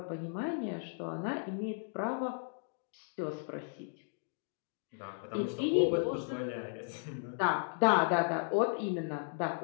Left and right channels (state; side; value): silent; right; digital silence